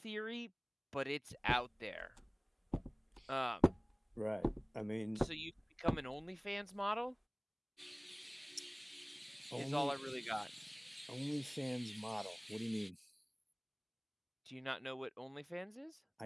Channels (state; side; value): identical; both; correlation 1.00